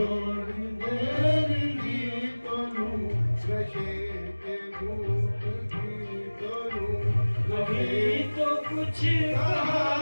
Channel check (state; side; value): inverted; both; correlation -1.00